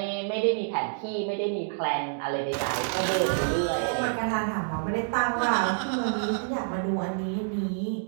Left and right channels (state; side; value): silent; left; digital silence